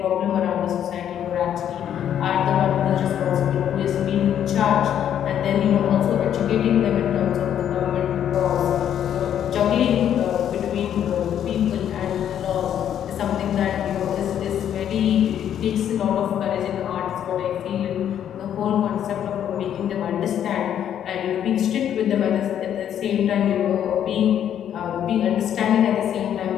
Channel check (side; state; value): right; quieter; 9.9 dB